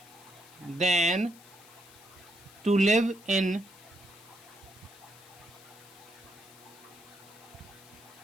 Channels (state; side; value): noise; left; hiss, 22 dB below the sound